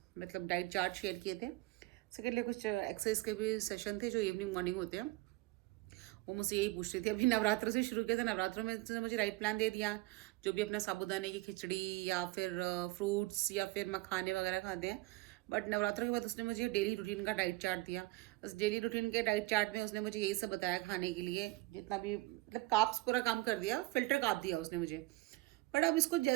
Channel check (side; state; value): left; quieter; 20.8 dB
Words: डाइट चार्ट शेयर किए थे। सेकेंडली कुछ एक्सरसाइज के भी सेशन थे जो इवनिंग मॉर्निंग होते हैं। वो मुझसे यही पूछ रही थी। अभी नवरात्रों से शुरू किया था, नवरात्रों में उसने मुझे डाइट प्लान दे दिया, जो भी अपना साबूदाने की खिचड़ी या फिर फ्रूट्स या फिर मखाने वगैरह खाते हैं। बट नवरात्रों के बाद उसने मुझे डेली रूटीन का डाइट चार्ट दिया। उस डेली रूटीन के डाइट चार्ट में उसने मुझे यही सब बताया खाने के लिए, जितना भी मतलब काप्स पूरा काम कर दिया, फिल्टर काप दिया उसने मुझे। बट अब इसको